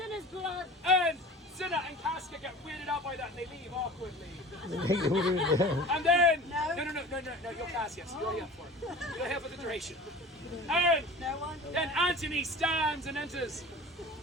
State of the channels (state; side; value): normal; both; correlation 0.39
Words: his blood. And Cinna and Casca get weirded out by that and they leave awkwardly. And then, no, you're Cassius, you're here for it. You're here for the duration. And then Antony stands and enters.